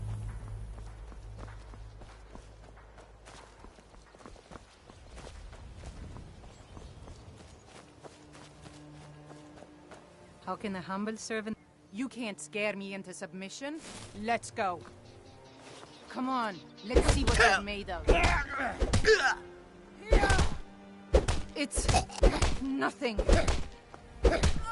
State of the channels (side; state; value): both; identical; correlation 1.00